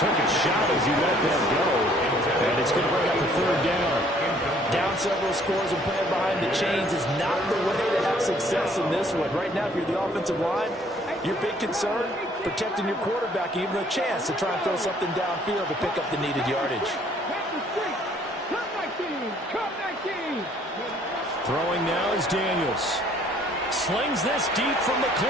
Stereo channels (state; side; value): normal; both; correlation 0.60